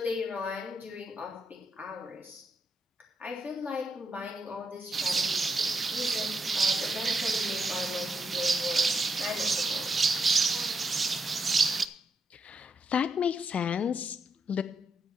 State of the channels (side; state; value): both; normal; correlation 0.81